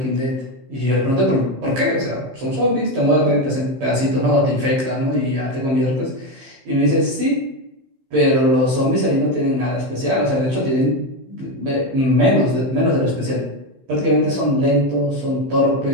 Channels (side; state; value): left; late; 15 ms